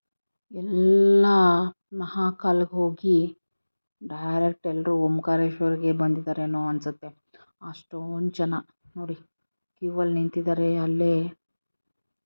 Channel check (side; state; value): both; inverted; correlation -1.00